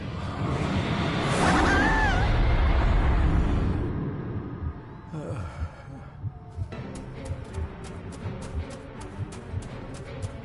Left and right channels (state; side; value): identical; both; correlation 1.00